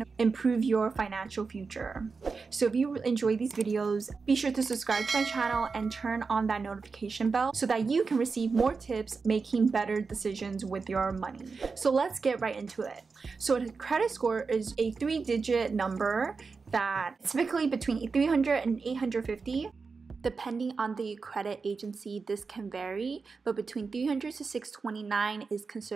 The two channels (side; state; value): left; quieter; 4.7 dB